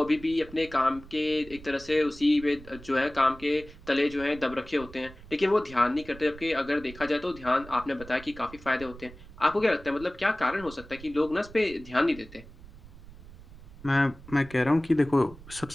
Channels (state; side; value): noise; right; rumble, 18 dB below the sound